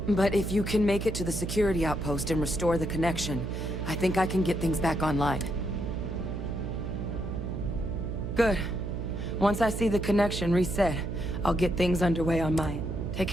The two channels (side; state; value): right; noise; hum, 4 dB below the sound